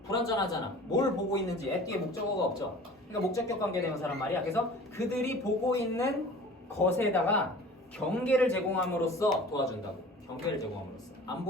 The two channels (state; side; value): normal; both; correlation 0.43